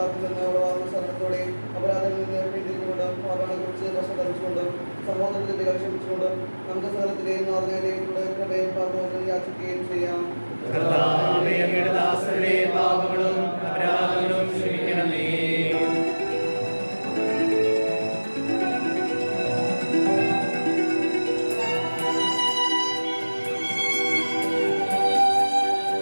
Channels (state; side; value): inverted; both; correlation -1.00